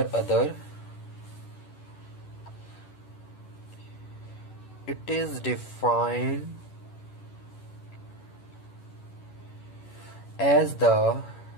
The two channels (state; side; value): late; right; 11 ms